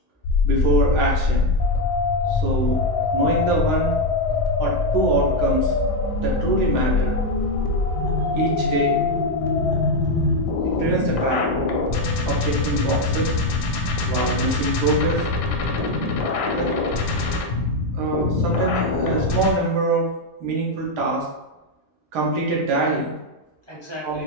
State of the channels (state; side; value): normal; both; correlation 0.05